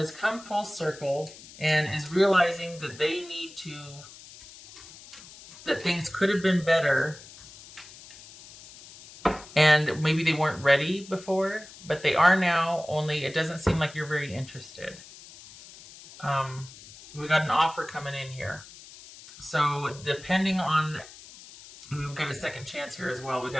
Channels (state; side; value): noise; left; hiss, 18 dB below the sound